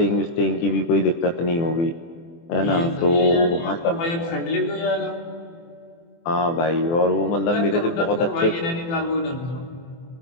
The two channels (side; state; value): right; late; 24 ms